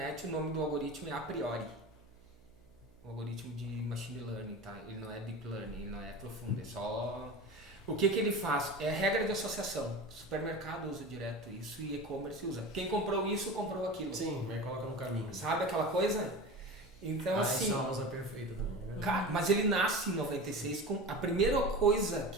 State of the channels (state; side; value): noise; right; hum, 28 dB below the sound